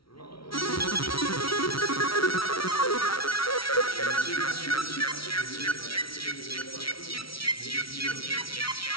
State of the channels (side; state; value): right; late; 0.74 ms